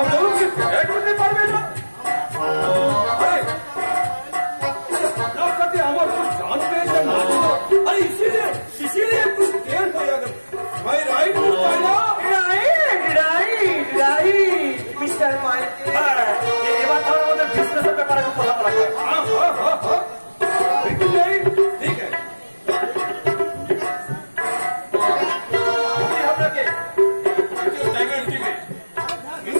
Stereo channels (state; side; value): inverted; both; correlation -1.00